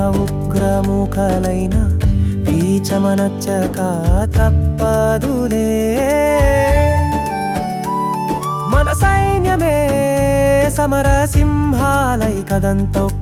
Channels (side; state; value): both; identical; correlation 1.00